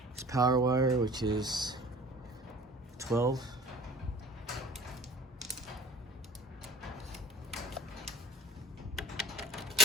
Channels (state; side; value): normal; both; correlation 0.45